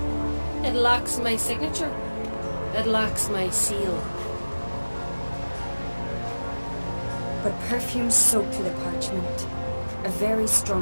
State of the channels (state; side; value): inverted; both; correlation -1.00